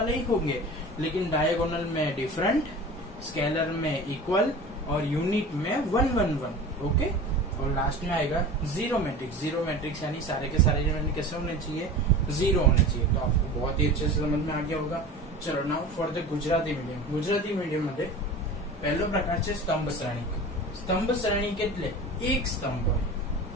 ही होंगे लेकिन डायगोनल में डिफरेंट, स्केलर में इक्वल और यूनिट में 1 1 1। ओके, और लास्ट में आएगा जीरो मैट्रिक्स। जीरो मैट्रिक्स यानी सारे के सारे एलिमेंट कैसे होने चाहिए, जीरो होने चाहिए। तो आपको बहुत ही अच्छे से समझ में आ गया होगा। चलो now for the Gujarati medium. Gujarati medium मध्ये पहलो प्रकार है स्तंभ श्रेणी। स्तंभ श्रेणी केटले एक स्तंभ होय,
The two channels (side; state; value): both; normal; correlation 0.35